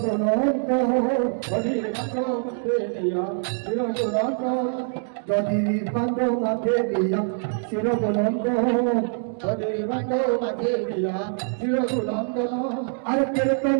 হরির ভাঙ্গা মুখে দিয়া চিরাগুণন্দন গদির ভাঙ্গ মাথে দিয়া শিরোবনন্ত হরির ভাঙ্গা মুখে দিয়া চিরাগুণন্দন আর কীর্তন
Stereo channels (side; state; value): left; silent; 62 dB below the other